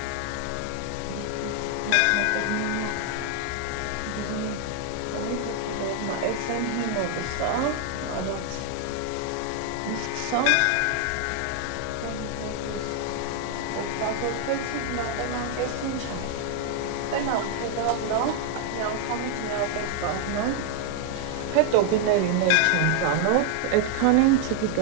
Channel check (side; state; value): both; different; correlation 0.00